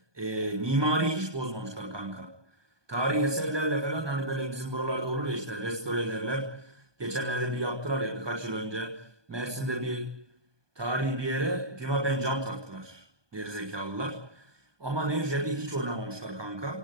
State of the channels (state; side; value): late; left; 1.2 ms